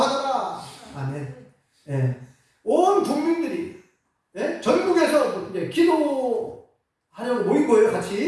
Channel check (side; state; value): both; identical; correlation 1.00